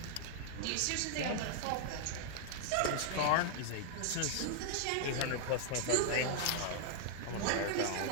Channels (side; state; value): both; different; correlation 0.00